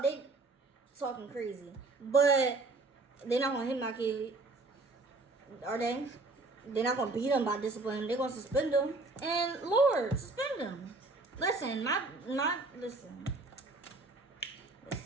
they talking crazy. But they're not going to hit my kid. Are they? They're not going to beat them by discipline. They're going to suspend them. And Lord, suspend them. Listen, listen,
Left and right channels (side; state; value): left; quieter; 3.3 dB